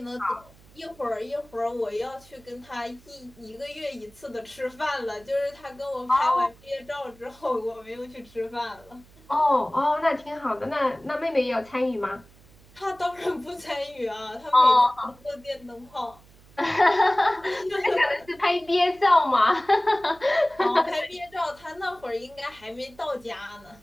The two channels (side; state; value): right; noise; hum, 26 dB below the sound